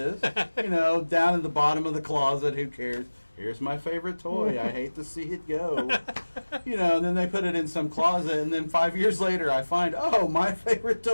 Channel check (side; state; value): both; inverted; correlation -1.00